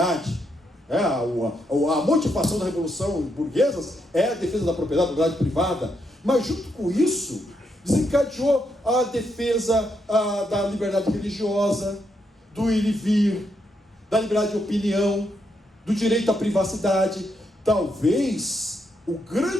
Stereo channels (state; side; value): normal; both; correlation 0.79